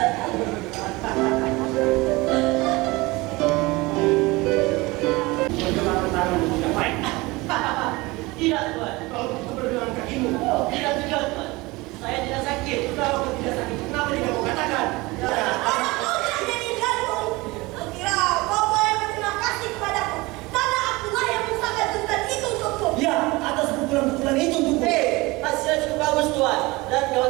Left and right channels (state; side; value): quieter; left; 22.5 dB